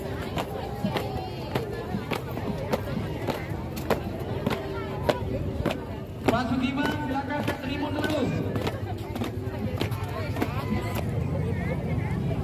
Pak Sugiman, silakan ke tribun dulu.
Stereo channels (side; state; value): both; identical; correlation 1.00